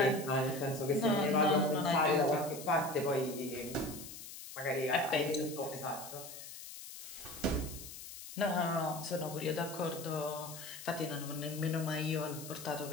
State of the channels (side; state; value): left; noise; hiss, 12 dB below the sound